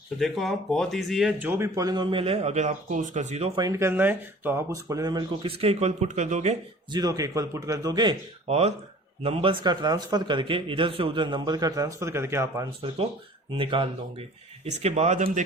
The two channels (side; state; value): both; normal; correlation 0.47